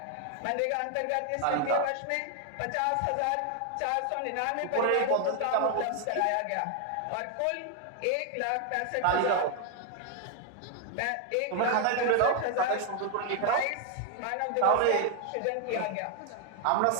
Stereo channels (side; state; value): both; different; correlation 0.00